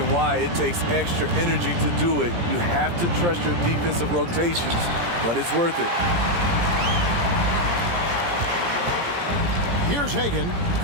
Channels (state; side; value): late; left; 17 ms